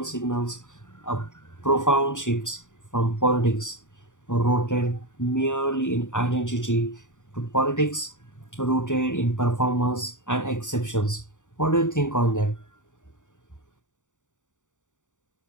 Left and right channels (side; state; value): right; late; 0.86 ms